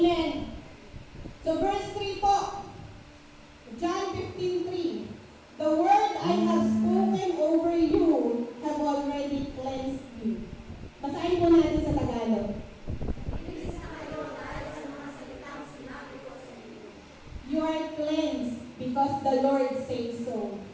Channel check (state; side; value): identical; both; correlation 1.00